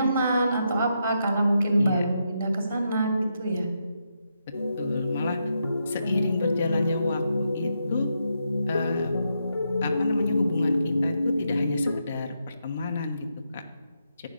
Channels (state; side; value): inverted; both; correlation -0.82